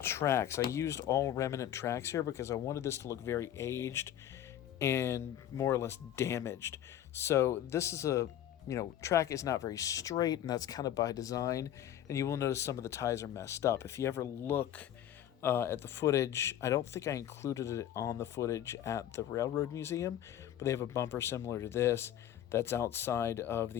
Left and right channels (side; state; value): right; quieter; 11.2 dB